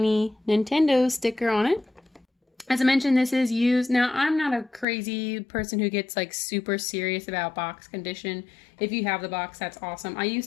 Nintendo sticker on it. As I mentioned, this is used. Now, I'm not a crazy person who gets like super serious about box condition. If you have the box, that's awesome. I used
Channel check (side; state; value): right; drops out; at 4.9 s